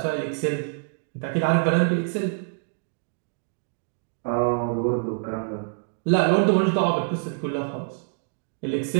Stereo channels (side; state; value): left; silent; digital silence